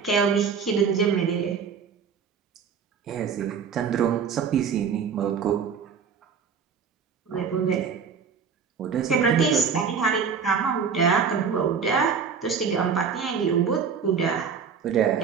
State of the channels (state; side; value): quieter; left; 6.3 dB